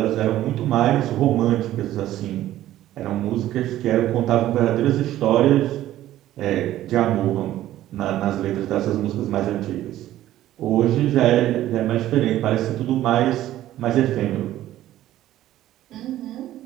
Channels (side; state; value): left; quieter; 13.7 dB